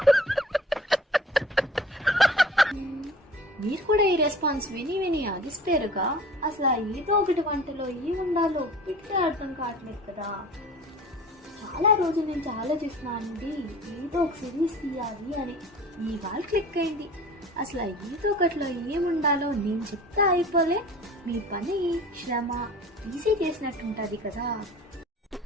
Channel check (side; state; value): both; normal; correlation 0.44